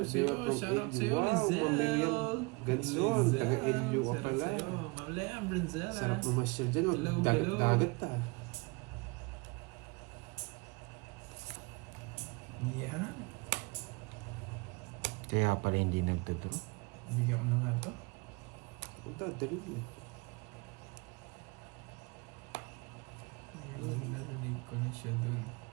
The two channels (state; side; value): quieter; left; 28.2 dB